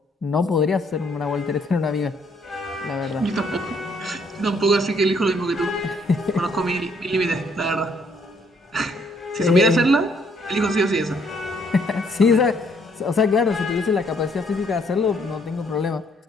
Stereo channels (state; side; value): normal; both; correlation 0.67